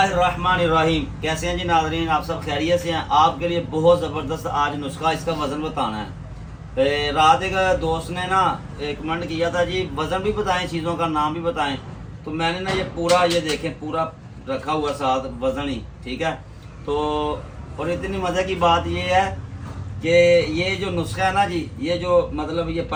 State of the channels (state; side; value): identical; both; correlation 1.00